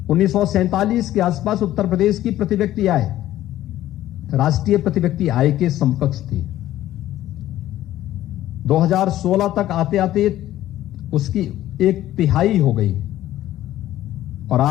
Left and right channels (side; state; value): right; quieter; 13.8 dB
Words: 1947 के आसपास उत्तर प्रदेश की प्रति व्यक्ति आय राष्ट्रीय प्रति व्यक्ति आय के समकक्ष थी। 2016 तक आते आते उसकी 1/3 हो गई और